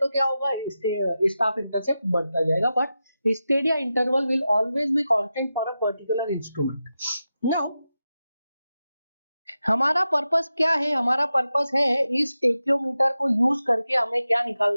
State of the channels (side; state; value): both; inverted; correlation -0.91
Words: क्या होगा, स्टाफ इंटरसेप्ट बढ़ता जाएगा। But Stadia interval will always be constant for a particular instrument. Now हमारा पर्पस क्या है, हमारा पर्पस है इस टेक्योमीटर को यूज करके हमें क्या